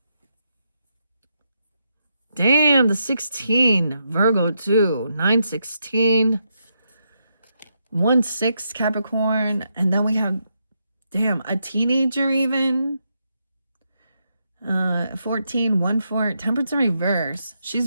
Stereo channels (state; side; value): inverted; both; correlation -0.81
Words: Damn, the 16, Virgo 2, 9/16, 1/6 Capricorn, and then we have, damn, a teenager even. 14, 1/4, Temperance in reverse. She's